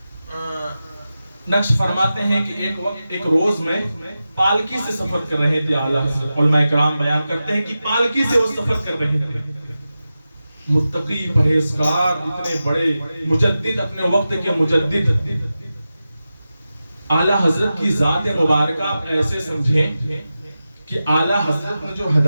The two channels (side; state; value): both; inverted; correlation -0.93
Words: ہیں کہ ایک روز میں پالکی سے سفر کر رہے تھے اعلیٰ حضرت۔ علماء کرام بیان کرتے ہیں کہ پالکی سے وہ سفر کر رہے تھے، متقی پرہیزگار اتنے بڑے مجدد، اپنے وقت کے مجدد اعلیٰ حضرت کی ذات مبارکہ آپ ایسے سمجھیں کہ اعلیٰ حضرت نے جو